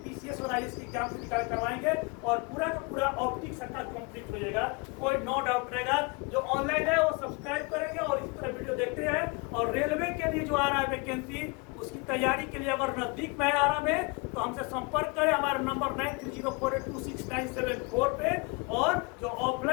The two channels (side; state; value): right; quieter; 29.5 dB